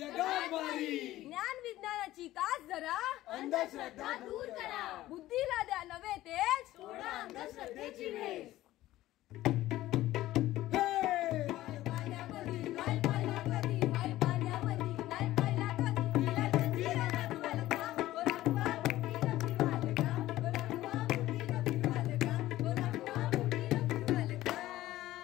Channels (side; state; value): right; quieter; 15.5 dB